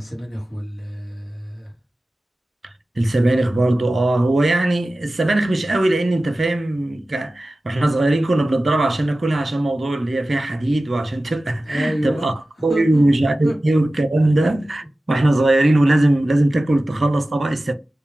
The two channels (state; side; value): normal; both; correlation 0.96